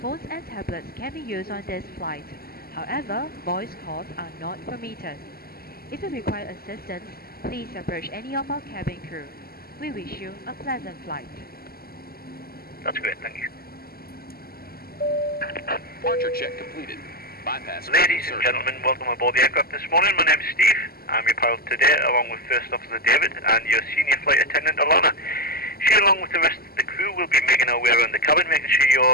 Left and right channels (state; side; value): late; right; 0.44 ms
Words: and tablets can be used on this flight. However, voice calls are not permitted. If you require assistance, please approach any of our cabin crew. We wish you a pleasant flight. That's great, thank you. Departure check completed. Bypass. Ladies and gentlemen, welcome aboard the aircraft this morning. My name's Steve. I'm your pilot today, along with First Officer David and your senior flight attendant Alana. She, along with the rest of the crew, will be making our way around the cabin, making sure